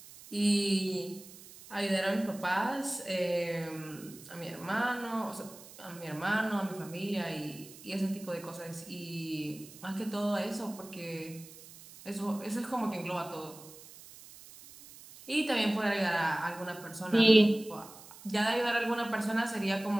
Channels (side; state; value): right; noise; hiss, 18 dB below the sound